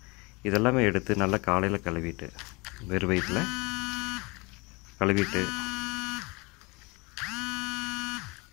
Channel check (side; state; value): right; quieter; 27.1 dB